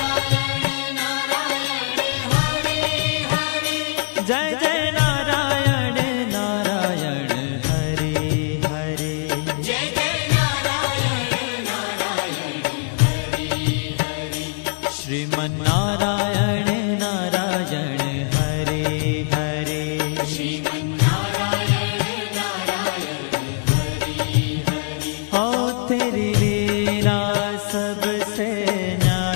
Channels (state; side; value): silent; right; digital silence